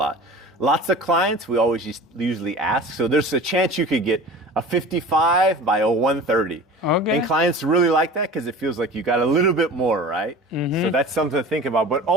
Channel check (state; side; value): normal; both; correlation 0.38